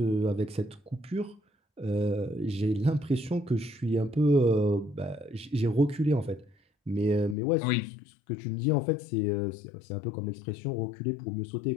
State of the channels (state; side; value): drops out; right; at 7.4 s